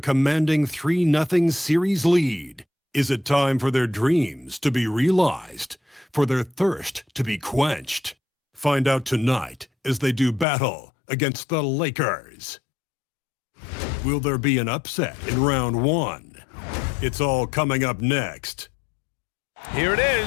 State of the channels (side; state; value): right; drops out; at 10.5 s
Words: commanding 3-0 series lead. Is it time for their dreams to be realized, for their thirst to be quenched? Find out tonight as they do battle against the Lakers. Will there be an upset in round 1? It's all coming up next. Here it